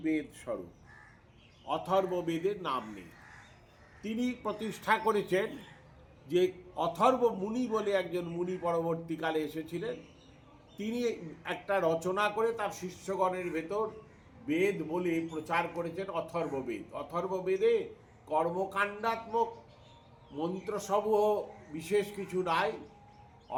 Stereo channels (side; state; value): both; identical; correlation 1.00